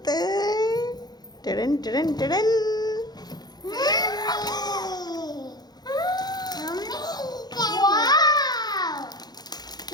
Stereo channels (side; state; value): right; late; 0.19 ms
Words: Tadam, tadam, tadam. Wow!